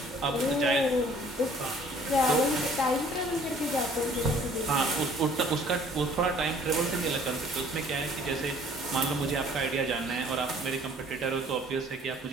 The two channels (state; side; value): normal; both; correlation 0.55